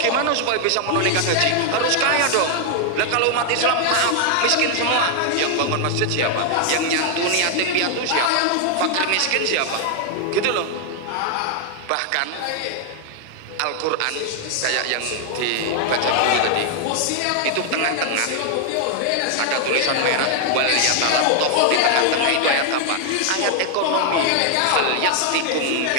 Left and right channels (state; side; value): different; both; correlation 0.00